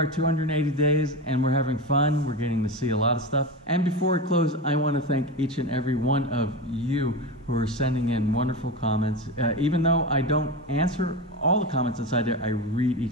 280 days and we're having fun. We're getting to see a lot of stuff. And before we close, I want to thank each and every one of you who are sending in wonderful comments. Even though I don't answer all the comments inside there, I read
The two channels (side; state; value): both; normal; correlation 0.22